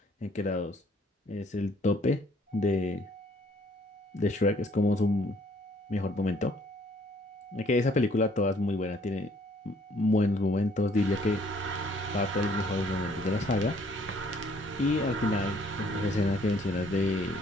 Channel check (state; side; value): normal; both; correlation 0.62